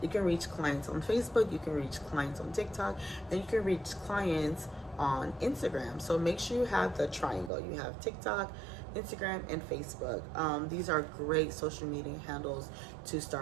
You can reach clients on Facebook, you can reach clients on TikTok, and you can reach clients on Instagram. So make sure you have the triangle. You have TikTok, Instagram, and Facebook. These are great social media handles to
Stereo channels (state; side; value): drops out; left; at 7.5 s